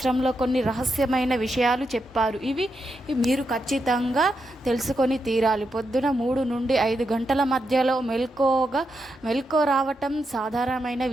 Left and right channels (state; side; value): normal; both; correlation 0.84